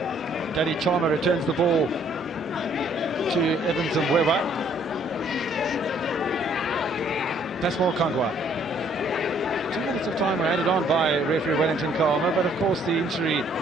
Danny Chalmer returns the ball to Evans and Weber. Pasmal Kangwa. 2 minutes of time were added on by referee Wellington Kalmer, but of course the injury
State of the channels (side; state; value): both; normal; correlation 0.64